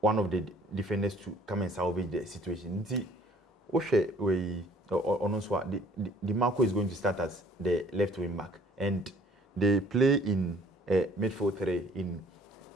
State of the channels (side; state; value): both; normal; correlation 0.57